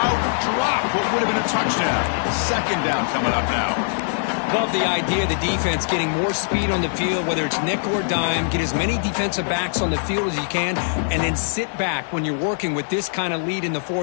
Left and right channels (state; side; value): silent; right; 57 dB below the other